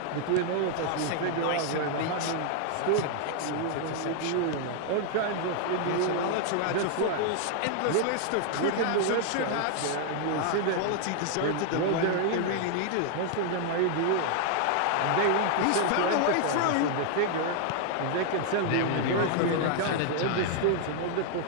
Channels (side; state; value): both; different; correlation 0.00